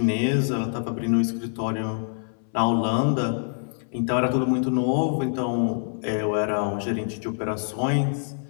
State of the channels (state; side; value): silent; right; 62 dB below the other